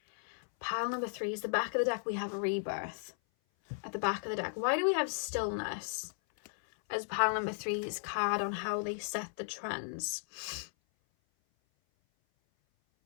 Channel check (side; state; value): right; silent; 54 dB below the other